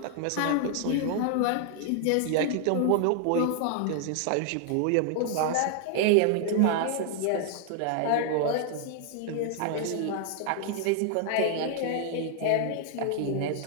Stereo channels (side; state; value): both; different; correlation 0.00